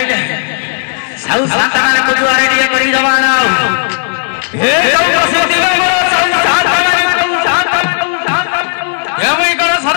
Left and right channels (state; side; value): silent; right; digital silence